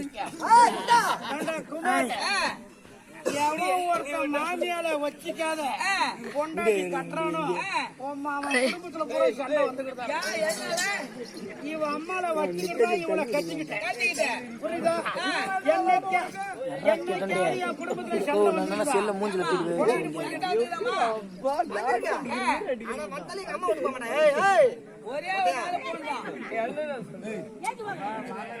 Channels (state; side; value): identical; both; correlation 1.00